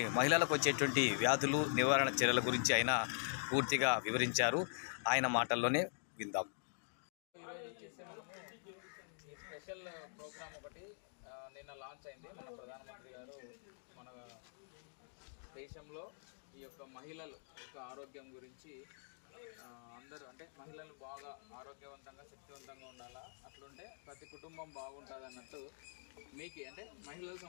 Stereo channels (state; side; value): silent; right; digital silence